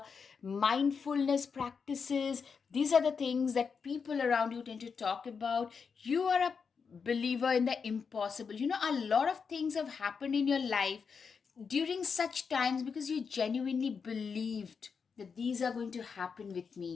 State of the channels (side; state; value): right; quieter; 5.8 dB